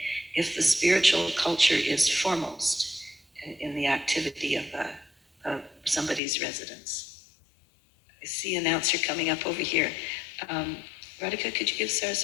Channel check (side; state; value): right; drops out; at 6.2 s